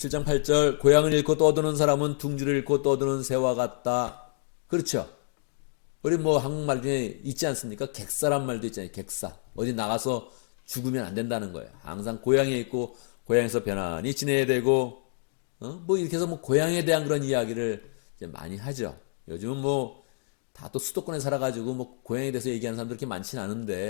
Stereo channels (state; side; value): silent; right; digital silence